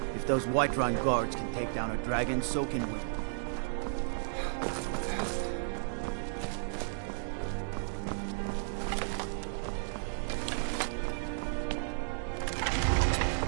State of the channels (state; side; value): silent; left; digital silence